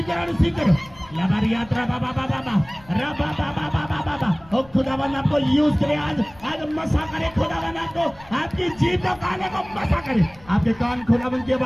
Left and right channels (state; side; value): noise; left; rumble, 23 dB below the sound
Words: करो, रिसीव करो। लबारी यात्रा बाबा बाबा बाबा, रबा बाबा बाबा बाबा। ओ खुदावन आपको यूज करे, आज मसा करे खुदावन आपको, आपकी जीभ को काने को मसा करे। आपके कान खुदावन की